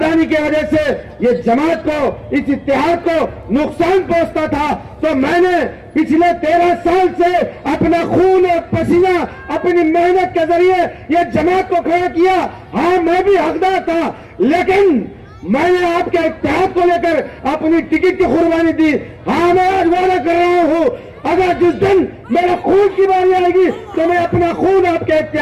की वजह से ये जमात को, इस इत्तेहाद को नुकसान पहुंचता था। तो मैंने पिछले 13 साल से अपना खून और पसीना, अपनी मेहनत के जरिए ये जमात को खड़ा किया। हाँ, मैं भी हकदार था, लेकिन मैंने आपके इत्तेहाद को लेकर अपनी टिकट की कुर्बानी दी। हाँ, मैं आज वादा कर रहा हूं, अगर जिस दिन मेरा खून की बारी आएगी तो मैं अपना खून आपके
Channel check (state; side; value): identical; both; correlation 1.00